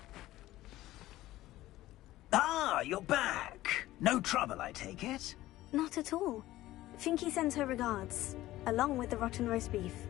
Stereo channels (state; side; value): quieter; right; 15.9 dB